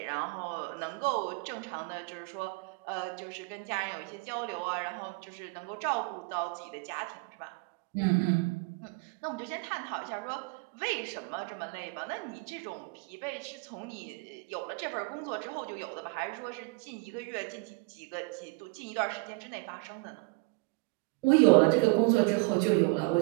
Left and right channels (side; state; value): left; quieter; 27.2 dB